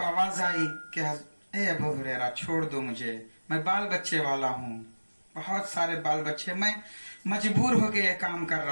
आवाज आई कि ए अबू हुरैरा छोड़ दो मुझे, मैं बाल बच्चे वाला हूँ, बहुत सारे बाल बच्चे, मैं मजबूर होके ये काम कर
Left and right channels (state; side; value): inverted; both; correlation -1.00